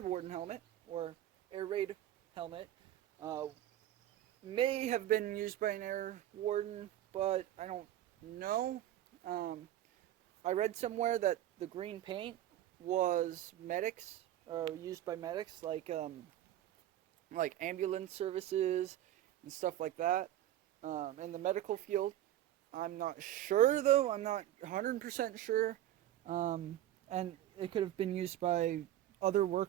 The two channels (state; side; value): quieter; left; 12.7 dB